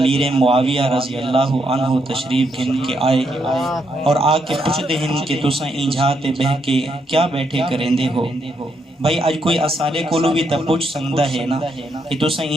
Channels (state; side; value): normal; both; correlation 0.78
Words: معاویہ رضی اللہ عنہ تشریف گھن کے آئے اور آ کے پوچھ دے ہیں کہ تساں اینجھاتے بہ کے کیا بیٹھے کریں دے ہو بھائی آج کوئی اسارے کولو بھی تا پوچھ سکتا ہے نا کہ تساں